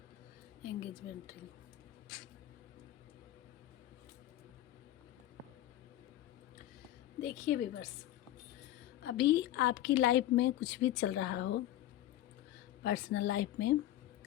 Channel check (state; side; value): quieter; right; 13.6 dB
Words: एंगेजमेंट रिंग। देखिए व्यूअर्स, अभी आपकी लाइफ में कुछ भी चल रहा हो, पर्सनल लाइफ में